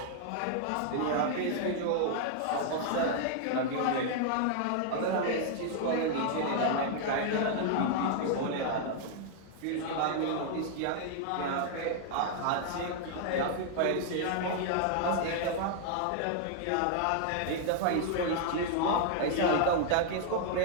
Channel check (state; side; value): different; both; correlation 0.00